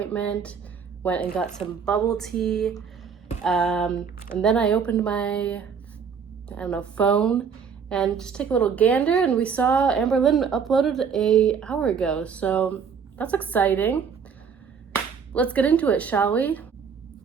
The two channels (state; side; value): quieter; left; 6.5 dB